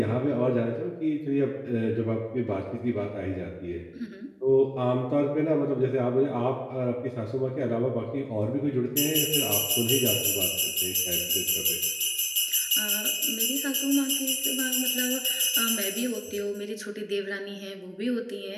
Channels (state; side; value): identical; both; correlation 1.00